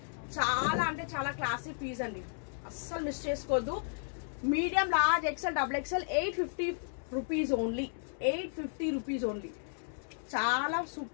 చాలా అంటే చాలా క్లాసిక్ పీస్ అండి, అస్సలు మిస్ చేసుకోవద్దు. Medium large XL double XL 850 rupees only. 850 rupees only. చాలా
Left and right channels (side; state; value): right; silent; digital silence